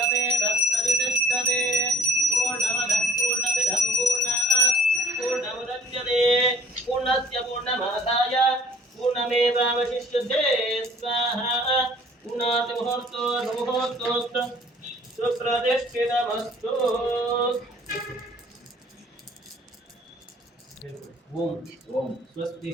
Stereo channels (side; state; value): both; normal; correlation 0.51